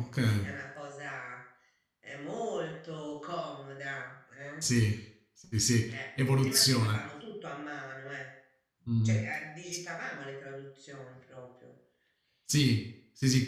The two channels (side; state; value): both; identical; correlation 1.00